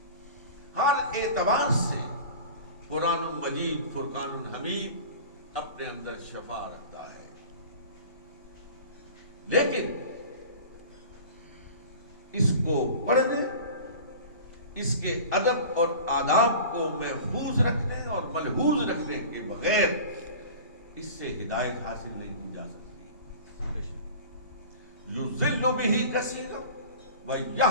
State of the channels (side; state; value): both; inverted; correlation -0.39